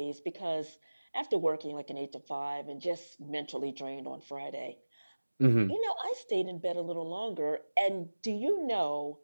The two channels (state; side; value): inverted; both; correlation -1.00